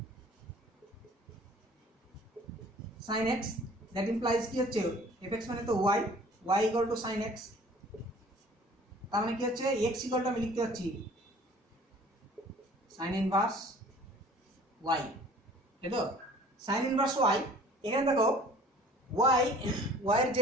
sin x, that implies কি হচ্ছে fx মানে তো y, y equal two sin x, তার মানে কি হচ্ছে x ইকুয়াল টু আমি লিখতে পাচ্ছি sin ইনভার্স y, তাই তো? sin ইনভার্স y, এখানে দেখো y এর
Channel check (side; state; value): both; normal; correlation 0.50